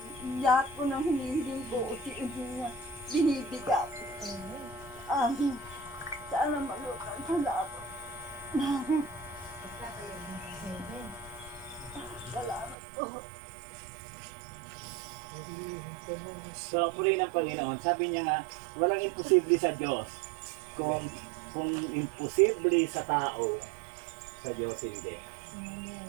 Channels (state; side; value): drops out; left; at 12.8 s